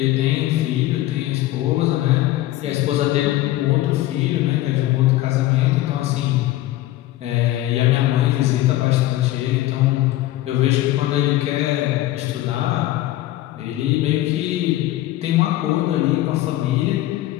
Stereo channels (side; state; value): right; quieter; 15.6 dB